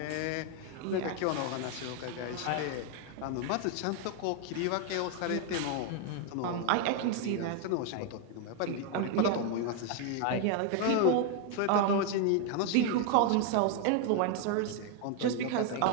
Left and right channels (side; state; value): both; different; correlation 0.01